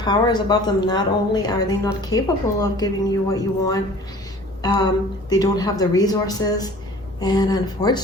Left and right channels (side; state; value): both; normal; correlation 0.47